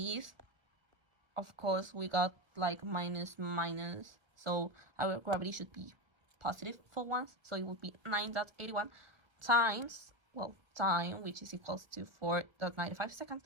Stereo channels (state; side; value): late; left; 1.1 ms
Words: of course, we got like minus. So our gravity should be positive for once. So it would be 9.81 times, well, time, which is equals to 4.95 seconds,